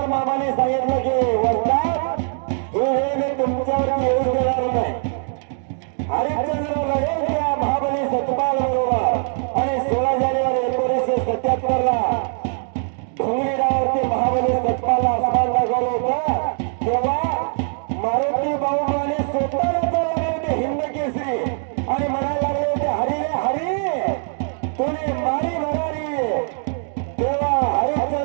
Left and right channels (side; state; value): left; silent; 60 dB below the other